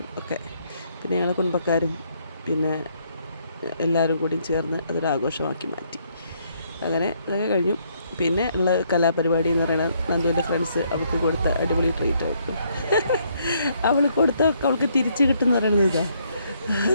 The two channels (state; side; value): inverted; both; correlation -0.71